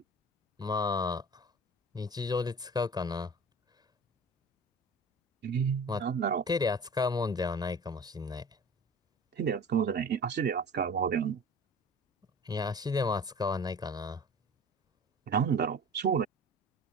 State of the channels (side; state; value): both; normal; correlation 0.39